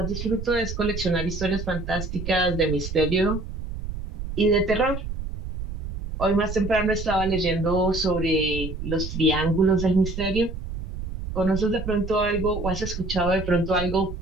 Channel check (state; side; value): noise; right; rumble, 7 dB below the sound